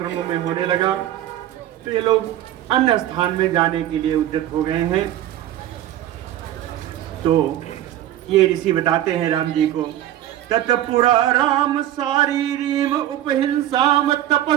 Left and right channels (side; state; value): left; quieter; 12.7 dB